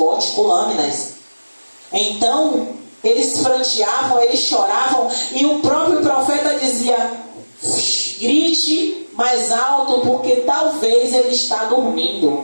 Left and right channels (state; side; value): inverted; both; correlation -1.00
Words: com lâminas. Então, eles pranteavam, eles choravam, e o próprio profeta dizia: grite mais alto, porque talvez ele está dormindo.